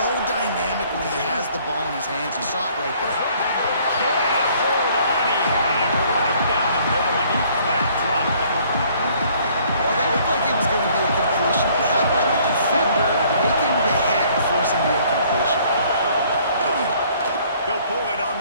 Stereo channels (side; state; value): both; inverted; correlation -0.60